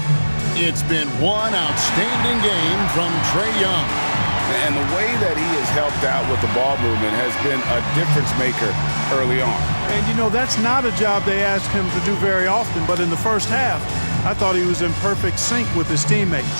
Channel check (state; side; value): inverted; both; correlation -1.00